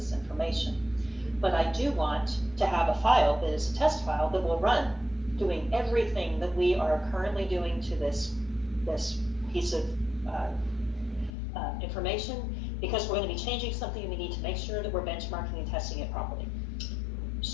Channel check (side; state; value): right; drops out; at 11.3 s